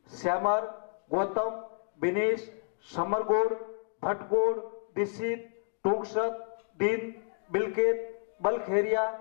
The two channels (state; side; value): silent; right; digital silence